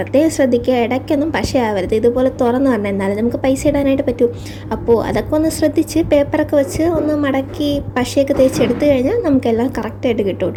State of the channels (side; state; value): both; identical; correlation 1.00